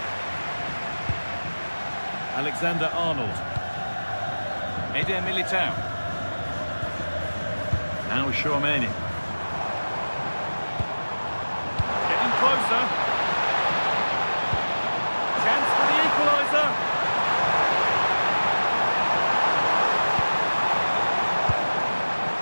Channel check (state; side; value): inverted; both; correlation -1.00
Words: Alexander-Arnold. Eder Militao. Now Tchouaméni. Getting closer. Chance for the equaliser.